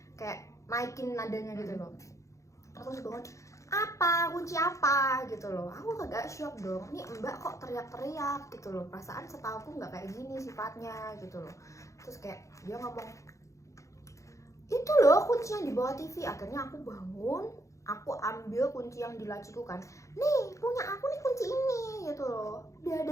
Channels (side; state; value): right; late; 0.15 ms